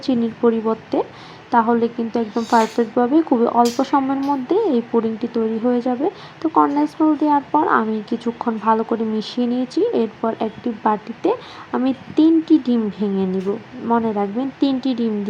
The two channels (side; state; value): both; identical; correlation 1.00